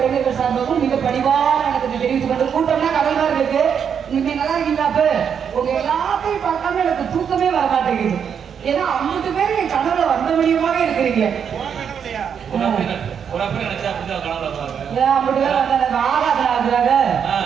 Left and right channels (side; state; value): left; quieter; 7.5 dB